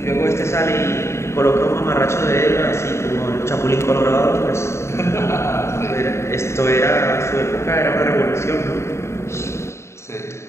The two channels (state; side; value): late; right; 0.13 ms